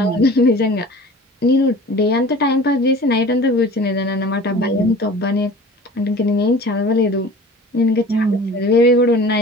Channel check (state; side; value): normal; both; correlation 0.42